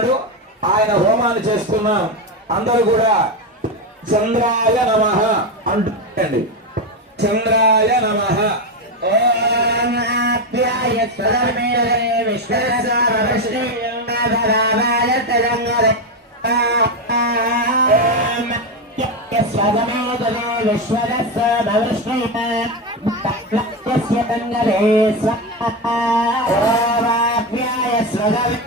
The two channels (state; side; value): normal; both; correlation 0.12